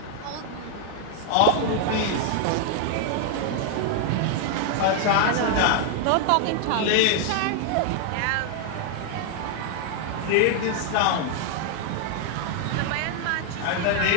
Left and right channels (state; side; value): different; both; correlation 0.00